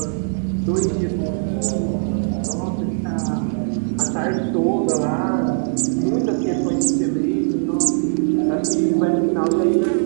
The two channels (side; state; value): left; silent; 61 dB below the other